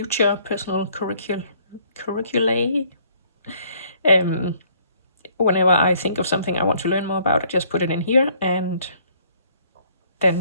personal curriculae, whenever I think of something I want to learn more about, I just put it in here, and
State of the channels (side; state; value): both; inverted; correlation -0.63